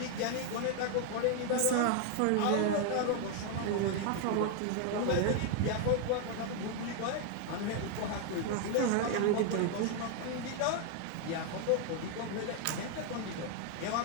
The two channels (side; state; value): both; different; correlation 0.00